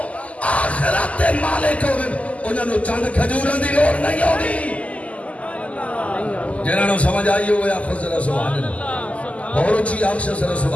آخرت دے مالک ہوئے انہوں نے چاند کھجورہ دی لوڑ نہیں ہوگی. جنہوں نے سمجھ آئی ہوئے آپ کو سبحان اللہ. اور اچھی آنکھ سے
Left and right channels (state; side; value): late; right; 0.067 ms